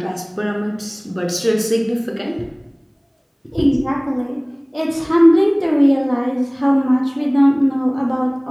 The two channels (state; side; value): identical; both; correlation 1.00